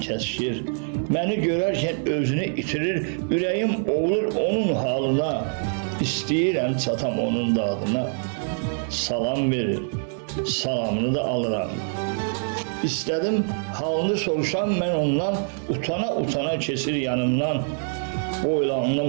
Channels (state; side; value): silent; left; 62 dB below the other